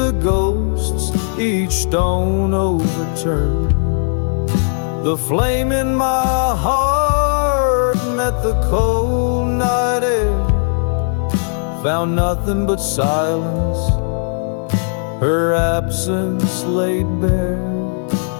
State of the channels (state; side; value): silent; right; digital silence